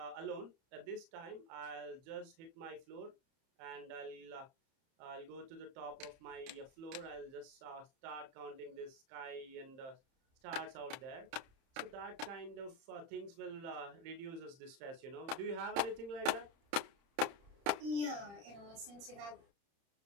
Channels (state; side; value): late; left; 30 ms